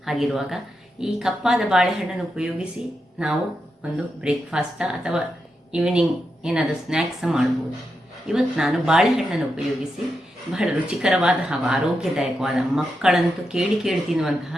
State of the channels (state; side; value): normal; both; correlation 0.86